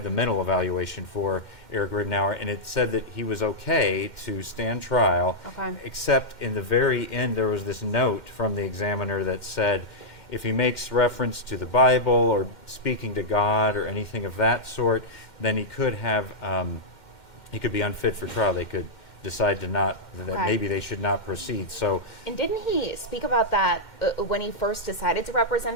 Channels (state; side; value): late; right; 2.1 ms